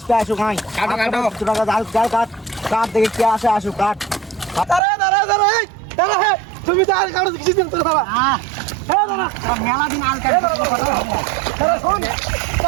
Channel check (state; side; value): drops out; left; at 4.8 s